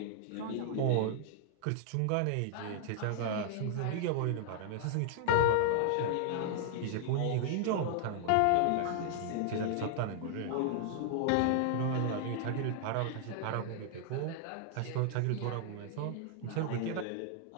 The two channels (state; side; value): different; both; correlation -0.01